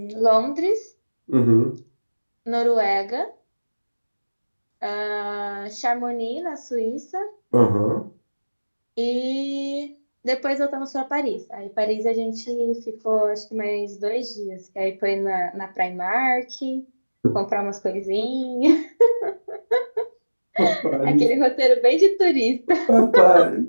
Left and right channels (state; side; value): inverted; both; correlation -1.00